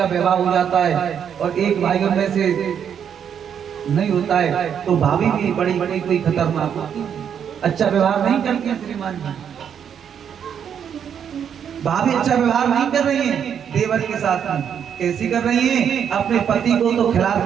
विवाह हो जाता है और एक भाइयों में से नहीं होता है, तो भाभी भी बड़ी बड़ी कोई खतरनाक होती है, अच्छा व्यवहार नहीं करती है। श्रीमान जी, भाभी अच्छा व्यवहार नहीं कर रही है देवर के साथ में। कैसी कर रही है? अपने पति को तो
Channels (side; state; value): left; quieter; 8.2 dB